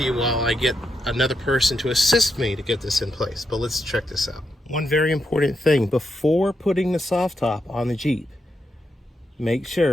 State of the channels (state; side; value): normal; both; correlation 0.83